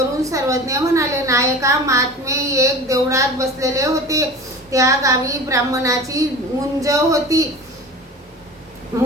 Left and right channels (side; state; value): both; normal; correlation 0.36